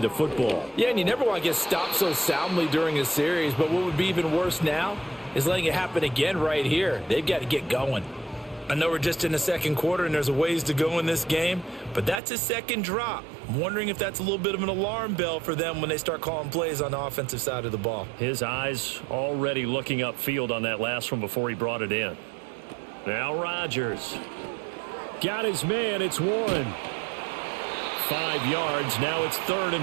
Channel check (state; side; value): drops out; left; at 12.2 s